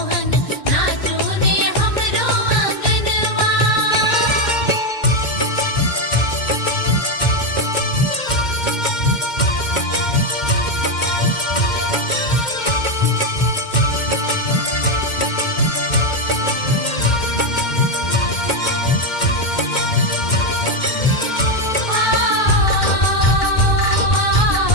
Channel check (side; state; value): right; late; 2.1 ms